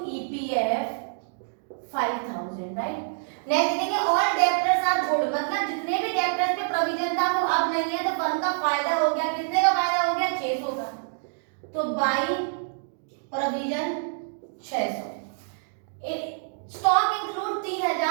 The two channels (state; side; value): silent; left; digital silence